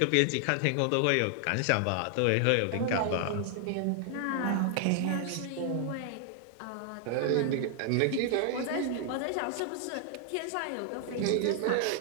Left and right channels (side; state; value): both; different; correlation 0.00